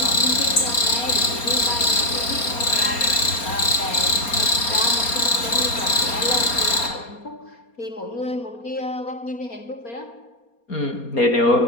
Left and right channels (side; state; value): right; late; 4.3 ms